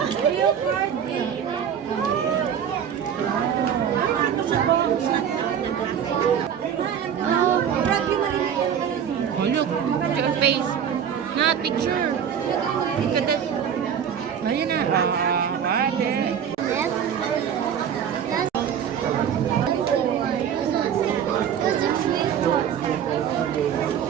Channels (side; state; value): left; quieter; 8.4 dB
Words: Real party. Oh, look. Look at face. Not picture. Look at that. Ayun na.